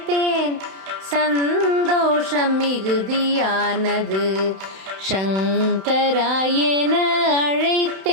சந்தோஷம் மிகுதியானது. சங்கராயன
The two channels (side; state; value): left; late; 31 ms